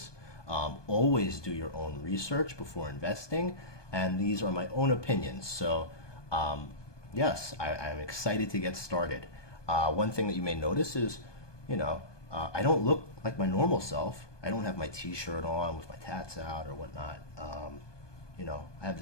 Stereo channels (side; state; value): right; late; 1.2 ms